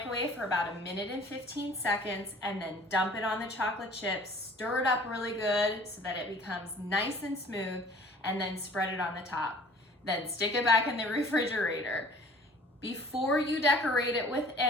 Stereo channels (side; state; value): both; normal; correlation 0.50